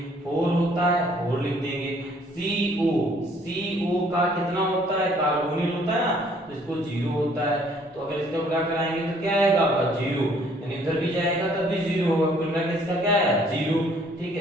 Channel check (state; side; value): normal; both; correlation 0.61